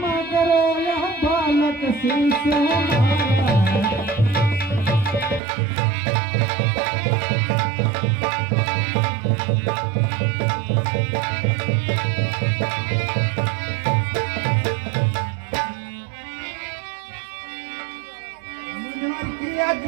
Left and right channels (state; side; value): drops out; left; at 5.4 s